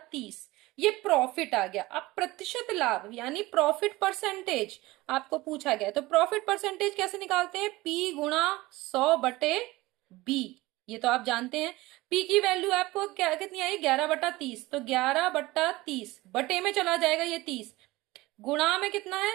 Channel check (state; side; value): quieter; left; 19.7 dB